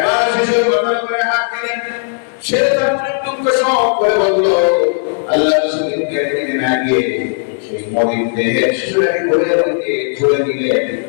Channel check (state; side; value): silent; right; digital silence